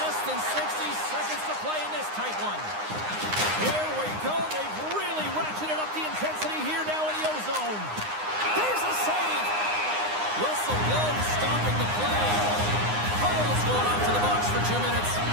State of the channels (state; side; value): late; left; 9.7 ms